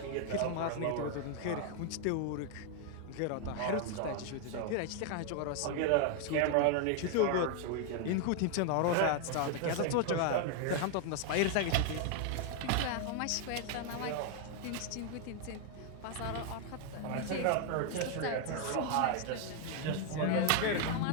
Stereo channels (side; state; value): both; different; correlation 0.00